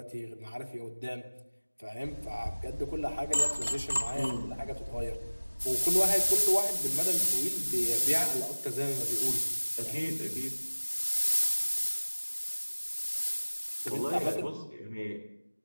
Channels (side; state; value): both; inverted; correlation -1.00